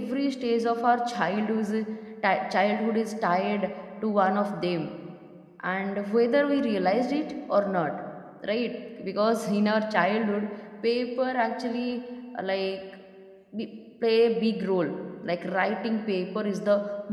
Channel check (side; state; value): both; identical; correlation 1.00